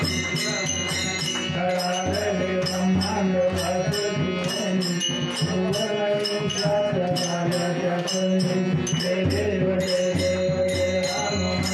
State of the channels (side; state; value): both; identical; correlation 1.00